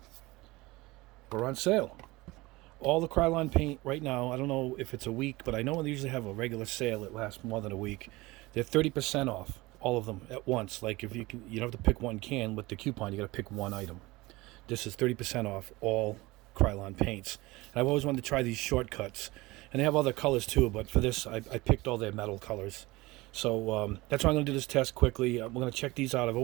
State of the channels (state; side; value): quieter; left; 21.2 dB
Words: were on sale. All the Krylon paint right now, I don't know if it's a week, but I know they usually have a regular sale that lasts more than a week. They're 30% off, all of them at once. Like if you don't have to pick one can with the coupon, you got to pick one item. This is 30% off all Krylon paints. And I've always wanted to try these shortcuts, and they have other colors too. But for this, I picked all their metal colors. So that's why I'm going to do this test quickly. I'm going to check these out. I've